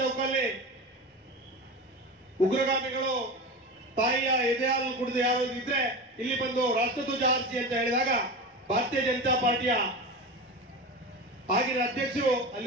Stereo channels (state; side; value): normal; both; correlation 0.26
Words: ಉಗ್ರಗಾಮಿಗಳು ತಾಯಿಯ ಎದೆ ಹಾಲು ಕುಡಿದು ಯಾರು ಇದ್ರೆ ಇಲ್ಲಿ ಬಂದು ರಾಷ್ಟ್ರಧ್ವಜ ಹಾರಿಸಿ ಅಂತ ಹೇಳಿದಾಗ ಭಾರತೀಯ ಜನತಾ ಪಾರ್ಟಿಯ ಆಗಿನ ಅಧ್ಯಕ್ಷರು